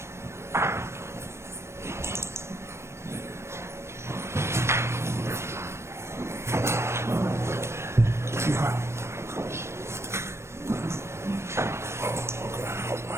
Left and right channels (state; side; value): late; left; 0.13 ms